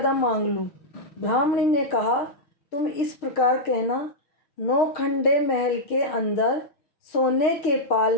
मांग लूँ। ब्राह्मणी ने कहा, तुम इस प्रकार कहना, नौखंडे महल के अंदर सोने के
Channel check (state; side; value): late; right; 6.5 ms